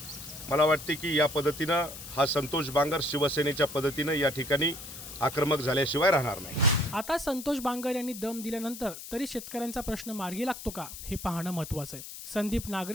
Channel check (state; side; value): noise; left; hiss, 11 dB below the sound